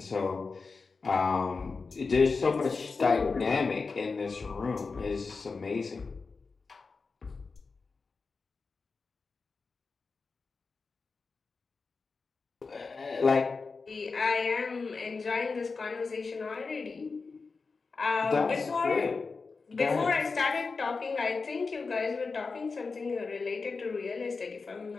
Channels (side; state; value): right; quieter; 4.4 dB